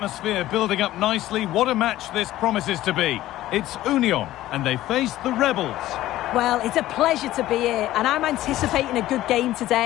building up nicely, what a match this promises to be. It's Union and they face the Rebels. Well, it's a pleasure to be here and I'm anticipating a good game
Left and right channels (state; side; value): quieter; right; 15.0 dB